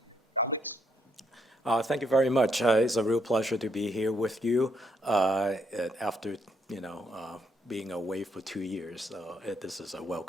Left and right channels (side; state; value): both; normal; correlation 0.73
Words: Alex? Thank you very much. It's a real pleasure to be here with you after, being away for 2 years. This is a